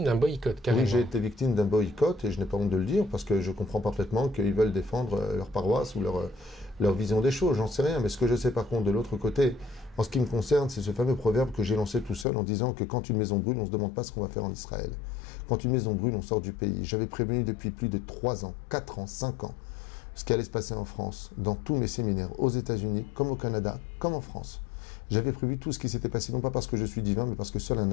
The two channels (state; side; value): drops out; right; at 12.2 s